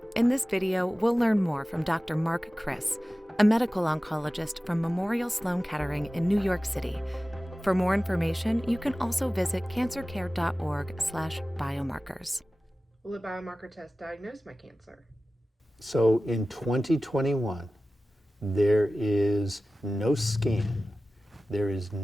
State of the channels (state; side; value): normal; both; correlation 0.96